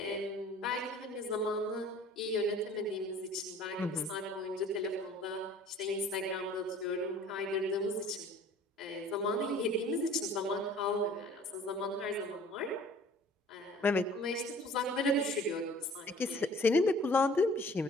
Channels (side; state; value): both; normal; correlation 0.50